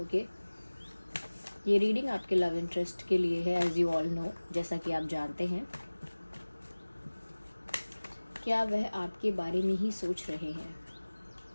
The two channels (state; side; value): inverted; both; correlation -1.00